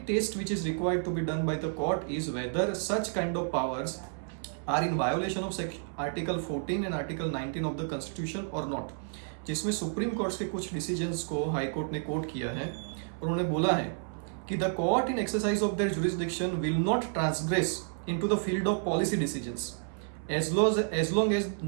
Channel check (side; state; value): left; silent; 57 dB below the other